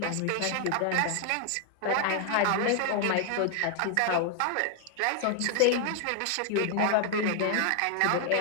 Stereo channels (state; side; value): different; both; correlation 0.00